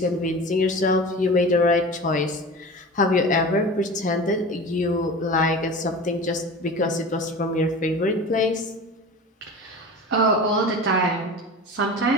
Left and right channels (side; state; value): both; normal; correlation 0.34